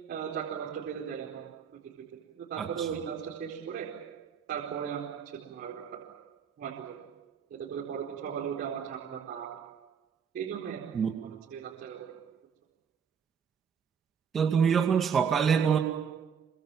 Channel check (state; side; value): quieter; left; 7.0 dB